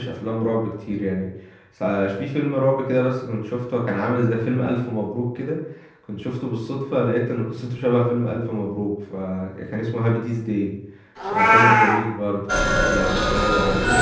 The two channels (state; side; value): identical; both; correlation 1.00